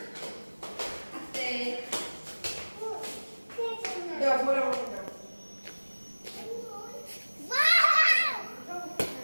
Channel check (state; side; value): inverted; both; correlation -1.00